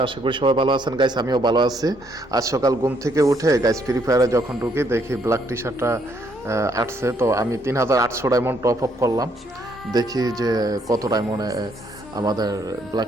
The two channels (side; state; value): both; normal; correlation 0.70